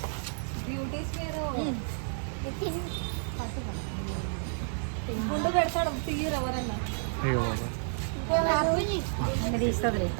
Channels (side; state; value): left; silent; digital silence